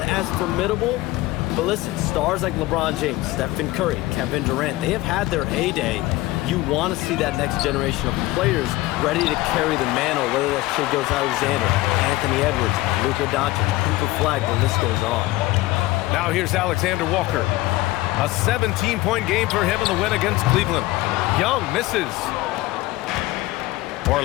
as formidable. But listen, stars like LeBron James, Stephen Curry, Kevin Durant, they have had their heyday. You want to see that next generation of players ready to carry the mantle, whether that's Shai Gilgeous-Alexander, Anthony Edwards, Luka Doncic, Cooper Flag, the list goes on. Now here's Alexander Walker. A 17-point game for him in the win against Cleveland. Young misses.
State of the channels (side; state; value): right; quieter; 18.6 dB